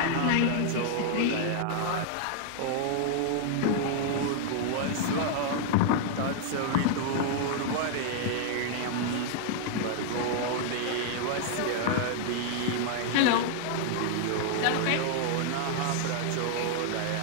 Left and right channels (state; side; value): different; both; correlation -0.01